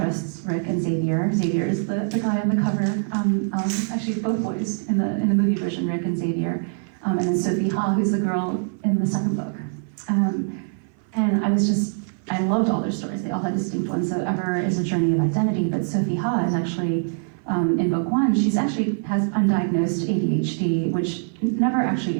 Rick and Xavier. Xavier is the guy on the cover. Actually, both boys in the movie version, Rick and Xavier. And then Sophie Ha, who's the girl in the second book. And I loved all their stories. They all had distinct ones. So Ever is a journey of identity, but Sophie Ha is actually, in book 1, she actually has undiagnosed ADHD, which never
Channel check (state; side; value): silent; left; 57 dB below the other